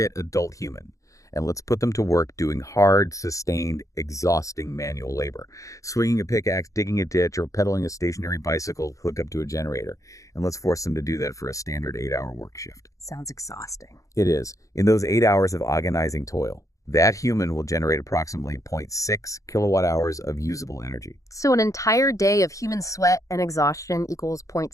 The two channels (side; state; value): right; late; 0.16 ms